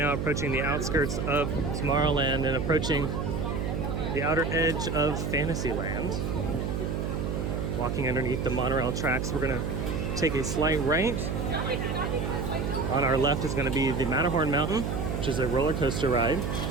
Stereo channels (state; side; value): noise; right; hum, 1 dB below the sound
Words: approaching the outskirts of Tomorrowland and approaching the outer edge of Fantasyland. Walking underneath the monorail tracks, we're going to take a slight right. On our left is going to be the Matterhorn Mountain, which is a roller coaster ride.